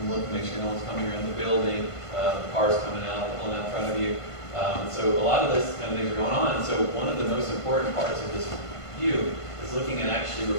look, make sure no one's coming around the building, cars coming out, pulling out in front of you. So a lot of this kind of things are going on. So one of the most important parts of this view is looking at actually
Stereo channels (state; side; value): late; right; 1.5 ms